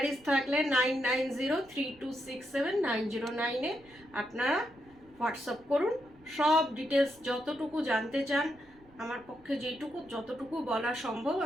থাকলে 9903267909-এ আপনারা হোয়াটসঅ্যাপ করুন। সব ডিটেলস যতটুকু জানতে চান আমার পক্ষে যতটুকু বলা সম্ভব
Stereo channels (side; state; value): right; noise; rumble, 28 dB below the sound